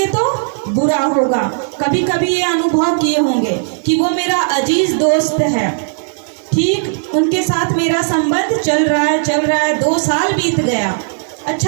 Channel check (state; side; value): silent; left; digital silence